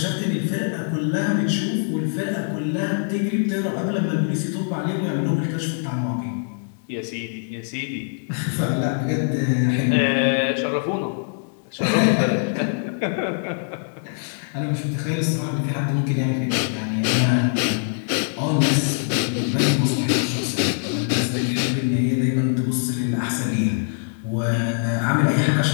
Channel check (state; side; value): silent; right; digital silence